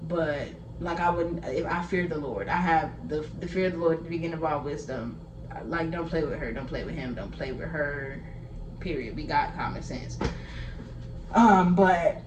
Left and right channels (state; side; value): identical; both; correlation 1.00